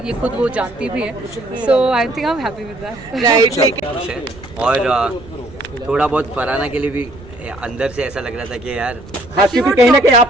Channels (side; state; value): right; noise; rumble, 19 dB below the sound